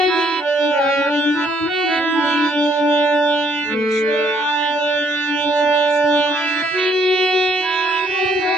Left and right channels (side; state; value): both; normal; correlation 0.68